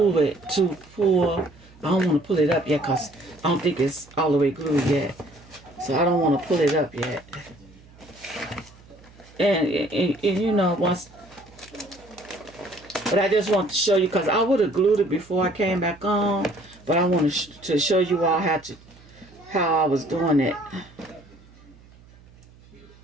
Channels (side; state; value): right; noise; hum, 25 dB below the sound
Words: it to pull. I don't want to pull it up yet because I don't think it's all the way glued yet. So I don't want to pull it up yet. And once, but I just want to show you because I would have glued it before I came back on, but I want to show you all how I was doing it.